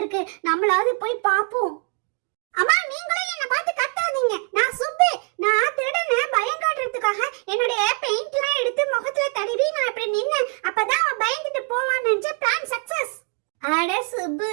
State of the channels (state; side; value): quieter; left; 37.6 dB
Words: நம்மளாவது போய் பாப்போம். அம்மா, நீங்களும் என்ன பார்த்து கத்தாதீங்க. நான் சுப்பு. நான் திருடனை பயம் காட்டுறதுக்காக என்னுடைய பெயிண்ட்லாம் எடுத்து முகத்துல தடவி நான் இப்படி நின்னேன். அப்பதான் அவன் பயந்துட்டு போவான்னு நினைச்ச பிளான் சக்சஸ். அட சுப்பு,